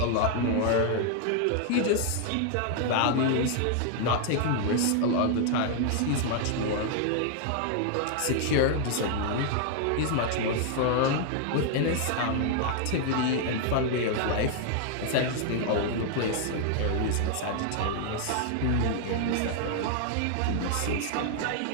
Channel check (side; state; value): both; different; correlation 0.00